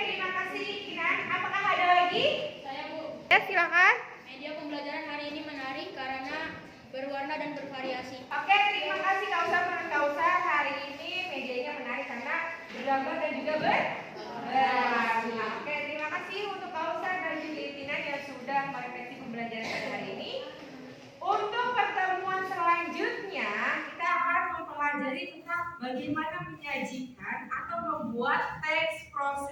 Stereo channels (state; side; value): identical; both; correlation 1.00